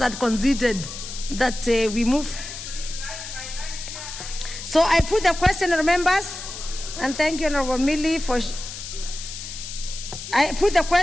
conceded that we move. So I put the question, members, and thank you, Honourable Millie, for. I put the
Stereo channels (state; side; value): noise; left; hiss, 10 dB below the sound